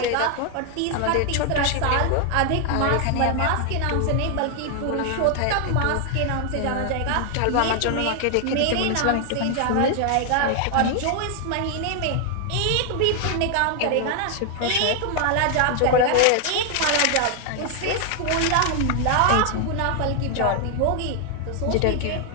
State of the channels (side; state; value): both; different; correlation 0.00